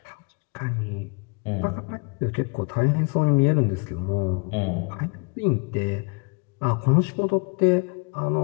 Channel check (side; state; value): right; quieter; 33.6 dB